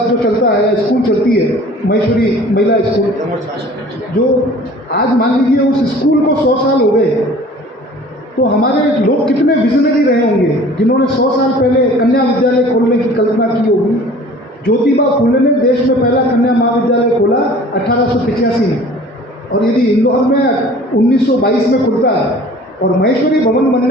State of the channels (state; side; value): normal; both; correlation 0.47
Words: जो चलता है, स्कूल चलती है, महेश्वरी महिला स्कूल, जो आज मान लीजिए उस स्कूल को 100 साल हो गए, तो हमारे लोग कितने विजनरी रहे होंगे जिन्होंने 100 साल पहले कन्या विद्यालय खोलने की कल्पना की होगी। ज्योतिबा फुले ने देश में पहला कन्या महाविद्यालय खोला 1885 में, और यदि इंदौर में 1922 में खुलता है और महेश्वरी भवन